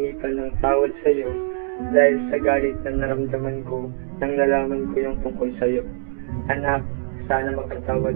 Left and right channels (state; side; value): silent; left; digital silence